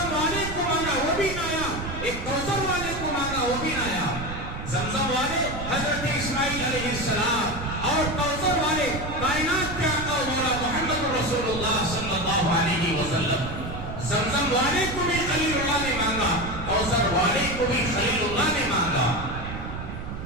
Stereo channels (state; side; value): noise; right; rumble, 8 dB below the sound